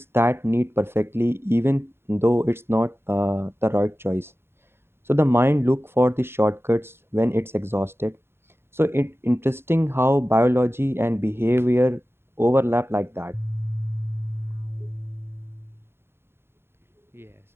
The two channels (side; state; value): left; late; 0.11 ms